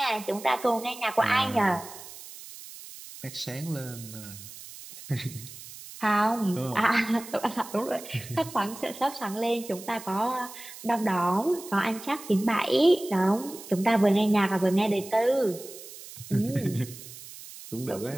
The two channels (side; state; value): right; noise; hiss, 15 dB below the sound